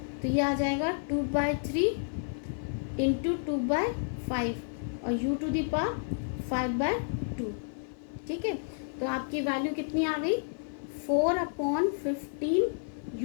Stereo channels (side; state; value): right; silent; 57 dB below the other